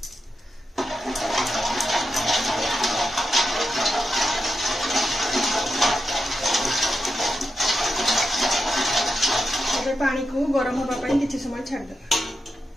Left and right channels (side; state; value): both; normal; correlation 0.88